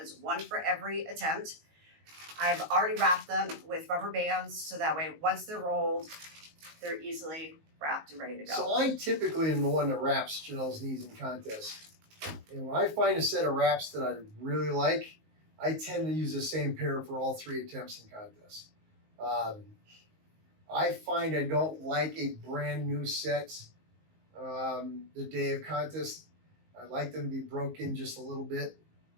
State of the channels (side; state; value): left; late; 19 ms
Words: 1 for every attempt. I've already wrapped them with rubber bands, so that way, once they're rolled, they're easily wrapped and ready to go. So I typically am the one that wraps Janelle's knees in contests. And when I find a set of wraps that I really like, I tend to use the same pair for all 3 attempts in contests. I find I don't like a brand new set the day of contest. I like them to be broken just a little bit.